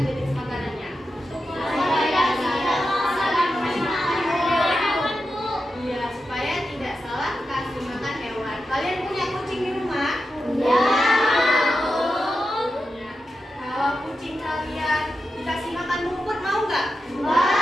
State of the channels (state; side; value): normal; both; correlation 0.90